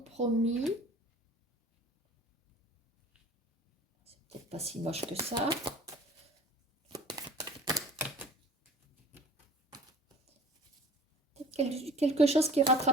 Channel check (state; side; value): normal; both; correlation 0.45